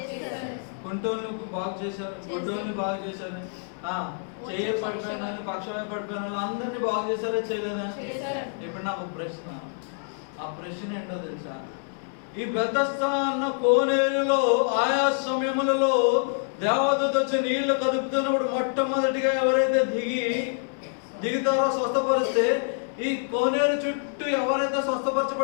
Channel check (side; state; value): right; silent; 60 dB below the other